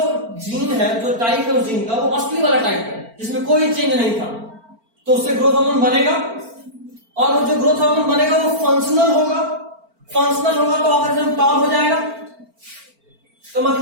जीन है, जो टाइप है उस जीन का, वो असली वाला टाइप है जिसमें कोई चेंज नहीं था, तो उससे ग्रोथ हार्मोन बनेगा, और वो जो ग्रोथ हार्मोन बनेगा वो फंक्शनल होगा, फंक्शनल होगा तो ऑर्गेनिज्म टॉल हो जाएगा। तो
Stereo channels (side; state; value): left; late; 4.4 ms